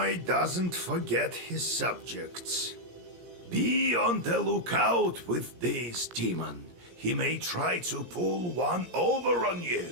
doesn't forget his subjects. Be on the lookout with this demon. He may try to pull one over on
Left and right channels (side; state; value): left; late; 17 ms